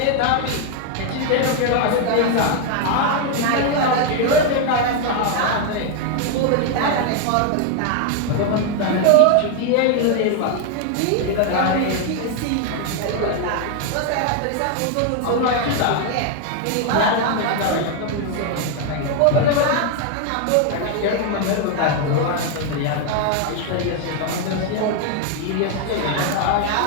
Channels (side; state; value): both; different; correlation 0.01